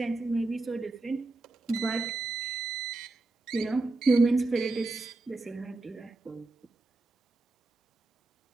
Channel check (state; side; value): quieter; left; 3.2 dB